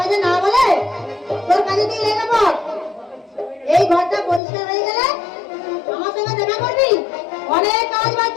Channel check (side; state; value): right; drops out; at 4.4 s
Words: না বলে তোর কাজে তুই লেগে পড়। এই ঘরটা পরিষ্কার হয়ে গেলে আমার সঙ্গে দেখা করবি, অনেক কাজ